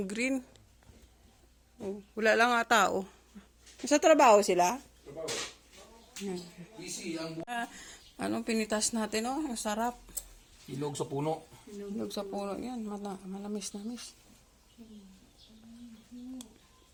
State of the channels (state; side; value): identical; both; correlation 1.00